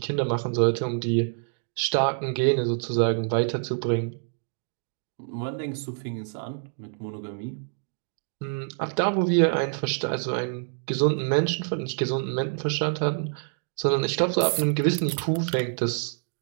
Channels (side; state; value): left; silent; digital silence